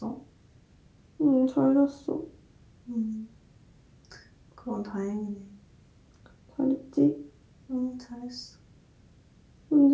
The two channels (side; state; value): both; identical; correlation 1.00